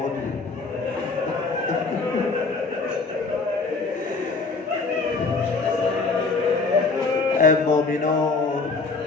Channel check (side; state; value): right; quieter; 4.1 dB